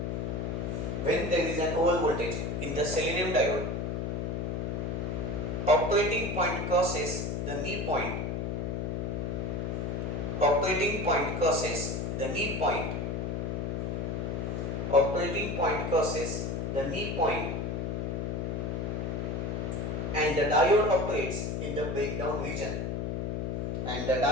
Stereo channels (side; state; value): left; noise; hum, 1 dB below the sound